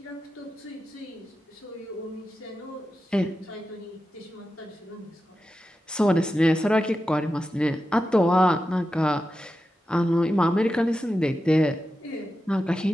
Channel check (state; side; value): normal; both; correlation 0.91